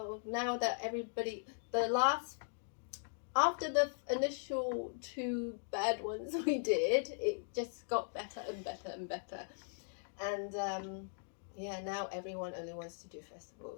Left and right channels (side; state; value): right; silent; digital silence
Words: now that everybody, after the initial 2 bad ones we did, it just got better and better and better. And yeah, now everyone only wants to do